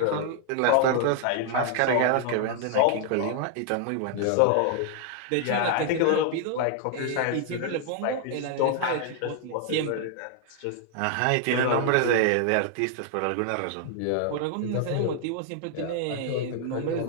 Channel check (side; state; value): both; different; correlation 0.00